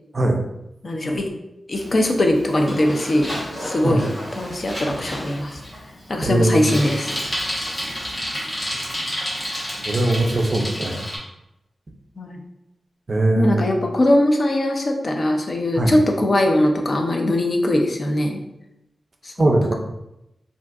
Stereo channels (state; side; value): normal; both; correlation 0.93